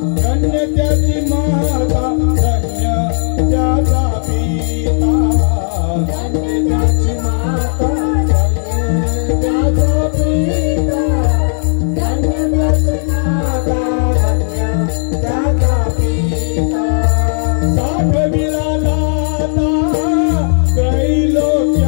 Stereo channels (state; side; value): silent; right; digital silence